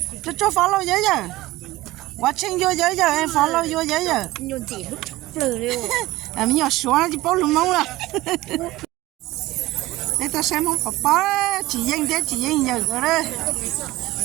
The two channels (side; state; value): left; quieter; 18.0 dB